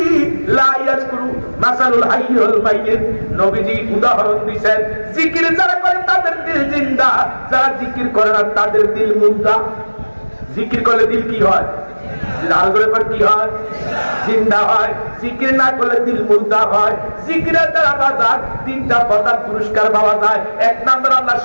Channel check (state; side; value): inverted; both; correlation -1.00